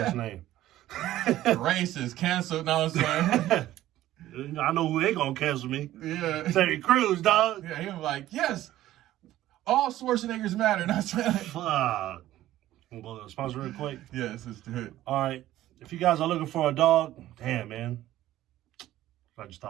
name? Racist, canceled, no, I'm saying. I know who they gonna cancel me. Yeah. Terry Crews, dog. Yeah, he was like, yes, all Schwarzeneggers matter. And I said, Fuck. We'll go to sponsor real quick. yes, let's do it. All right. If you guys are looking for a dog, damn, man. I just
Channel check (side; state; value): left; quieter; 14.3 dB